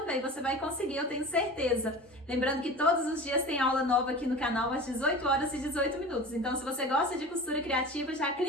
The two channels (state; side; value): normal; both; correlation 0.35